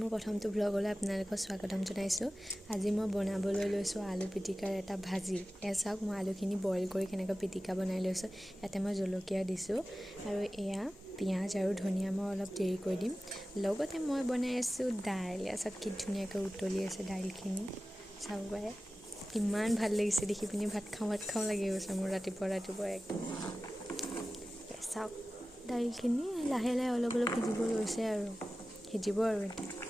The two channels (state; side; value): normal; both; correlation 0.95